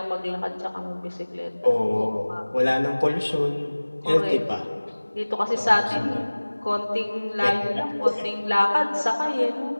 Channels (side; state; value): both; inverted; correlation -1.00